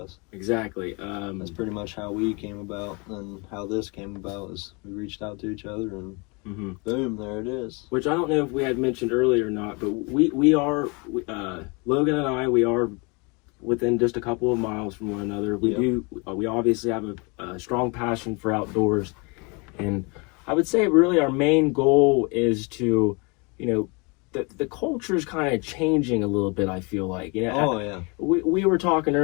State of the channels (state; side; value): quieter; right; 30.2 dB